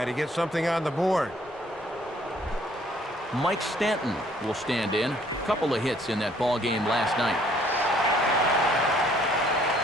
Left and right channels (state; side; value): normal; both; correlation 0.62